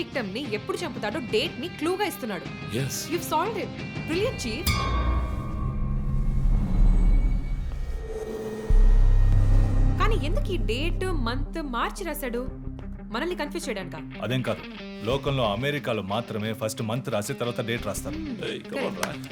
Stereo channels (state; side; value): identical; both; correlation 1.00